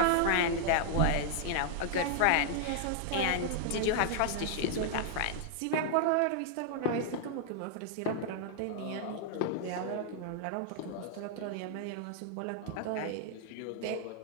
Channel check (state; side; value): different; both; correlation 0.00